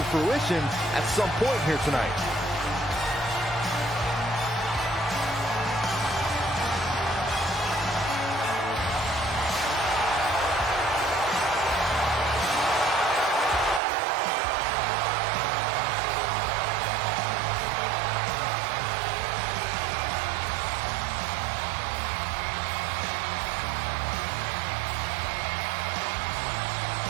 fruition at some point here tonight.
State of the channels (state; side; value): drops out; left; at 13.8 s